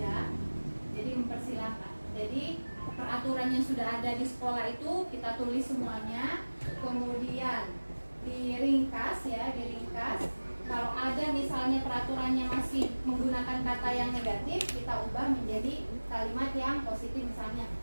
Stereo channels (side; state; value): both; inverted; correlation -1.00